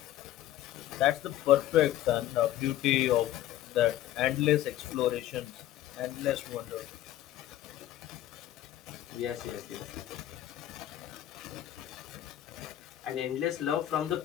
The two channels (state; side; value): quieter; right; 13.2 dB